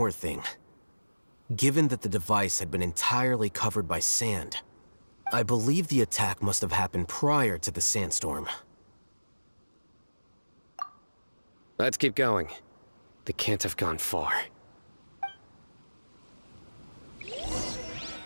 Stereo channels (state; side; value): inverted; both; correlation -1.00